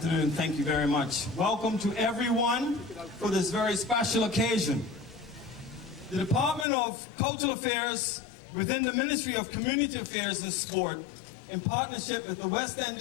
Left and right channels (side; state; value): right; drops out; at 6.7 s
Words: Thank you very much. Welcome to everyone for this very special occasion. The Department of Cultural Affairs within the Ministry of Community Affairs and Sport, in partnership with the West End